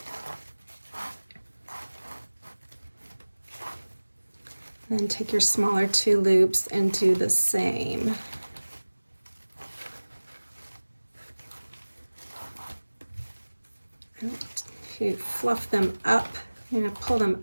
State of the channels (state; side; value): inverted; both; correlation -1.00